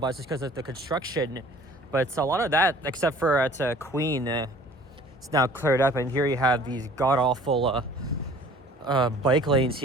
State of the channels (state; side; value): normal; both; correlation 0.50